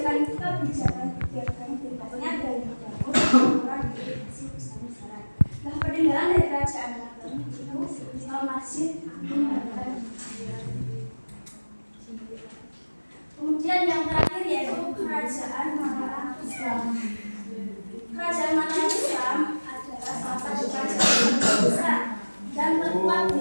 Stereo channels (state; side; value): inverted; both; correlation -1.00